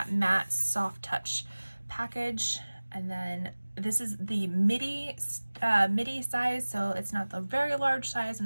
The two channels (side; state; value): both; inverted; correlation -1.00